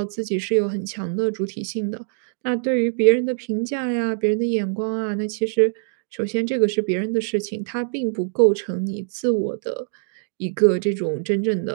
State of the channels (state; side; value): silent; left; digital silence